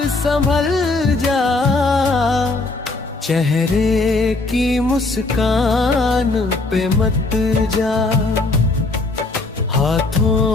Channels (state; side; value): quieter; right; 3.3 dB